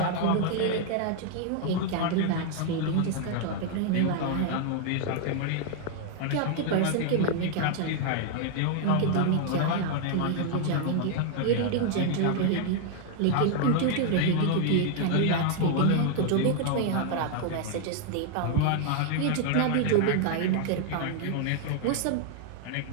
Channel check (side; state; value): both; different; correlation 0.00